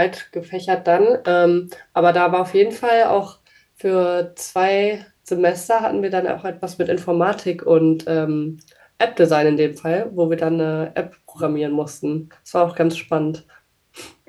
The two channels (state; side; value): identical; both; correlation 1.00